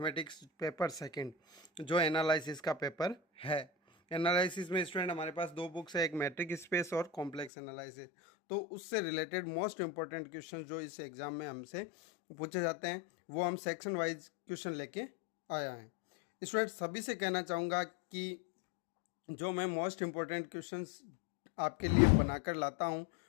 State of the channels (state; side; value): drops out; right; at 7.5 s